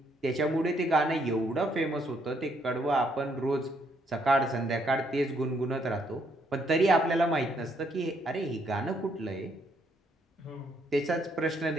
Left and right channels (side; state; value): both; normal; correlation 0.71